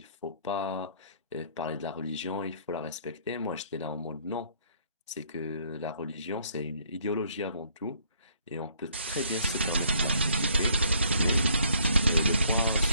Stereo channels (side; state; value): both; inverted; correlation -0.64